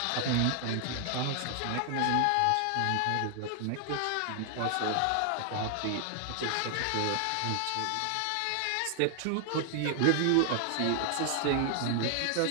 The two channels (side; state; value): both; different; correlation 0.00